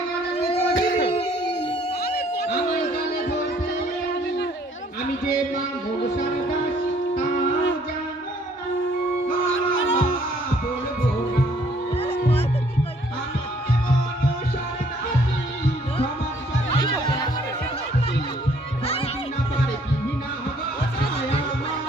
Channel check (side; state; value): both; normal; correlation 0.62